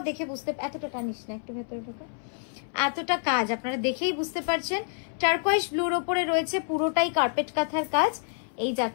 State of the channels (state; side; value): silent; right; 59 dB below the other